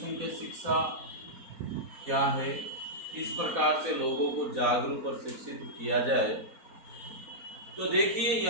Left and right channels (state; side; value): late; left; 4.0 ms